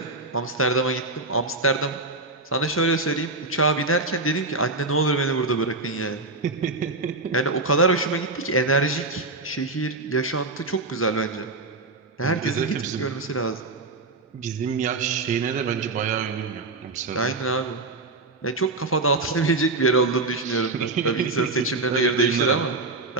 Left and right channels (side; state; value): left; quieter; 3.3 dB